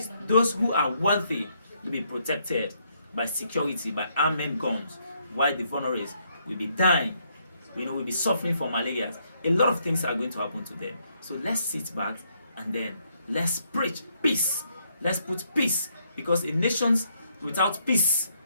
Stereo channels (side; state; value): both; inverted; correlation -0.73